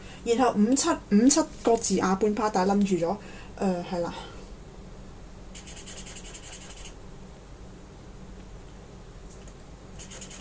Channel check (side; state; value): both; identical; correlation 1.00